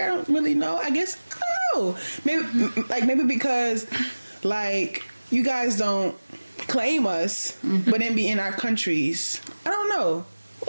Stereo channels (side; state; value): both; inverted; correlation -1.00